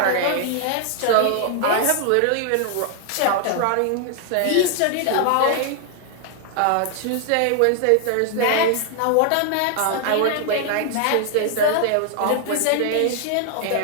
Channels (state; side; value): different; both; correlation 0.00